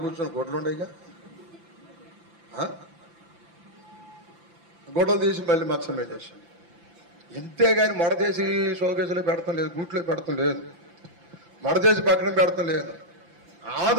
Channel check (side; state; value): left; late; 5.9 ms